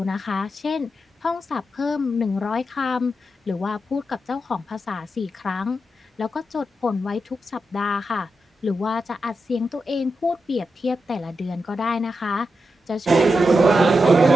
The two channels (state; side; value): normal; both; correlation 0.87